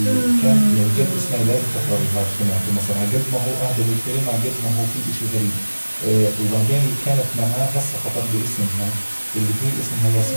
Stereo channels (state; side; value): inverted; both; correlation -1.00